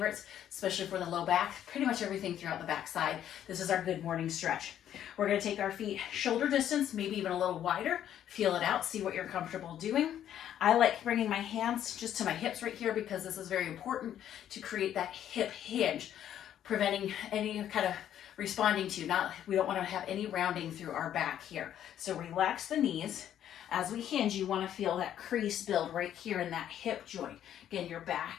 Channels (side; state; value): right; quieter; 10.6 dB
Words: especially for the low back, pretty much everything throughout the back side. This is our good morning stretch. We're going to take our feet shoulder distance, maybe even a little wider. Feel it out, see what you're comfortable doing. I like bringing my hands just to my hips right here because this is very important to create that hip hinge, preventing any kind of responding to, we don't want to have any rounding through our back here. So relax the knees. As we hinge, you want to feel that crease build right here in that hip joint. Again, your